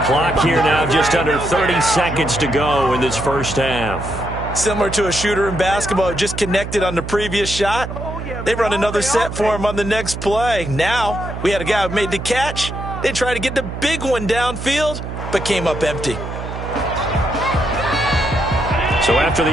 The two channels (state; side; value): noise; right; hum, 7 dB below the sound